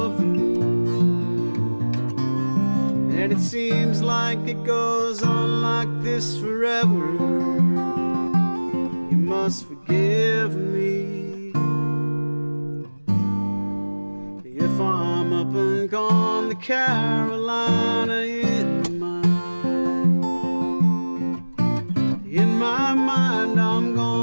the moon. And it seems like it goes on like this forever. You must forgive me if I'm up and gone to Carolina in my mind. In my mind, I'm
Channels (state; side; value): inverted; both; correlation -1.00